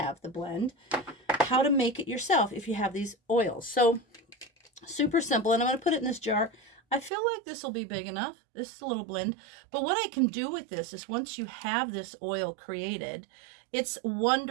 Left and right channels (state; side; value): drops out; left; at 7.1 s